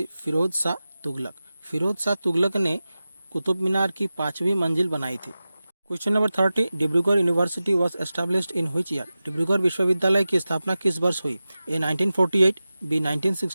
फिरोज शाह तुगलक। फिरोज शाह तुगलक ने कुतुब मीनार की 5वीं मंजिल बनाई थी। Question number 30, Dibrugarh university was established in which year? Dibrugarh विश्वविद्यालय की स्थापना किस वर्ष हुई? ए 1948, बी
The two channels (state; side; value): inverted; both; correlation -0.95